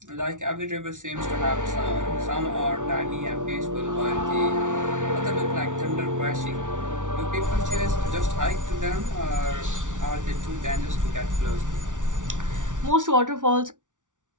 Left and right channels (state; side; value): late; left; 0.87 ms